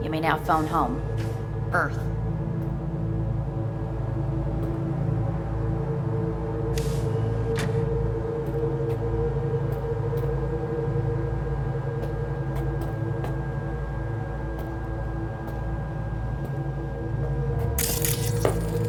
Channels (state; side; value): identical; both; correlation 1.00